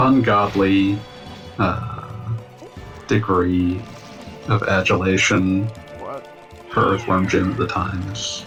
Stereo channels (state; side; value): identical; both; correlation 1.00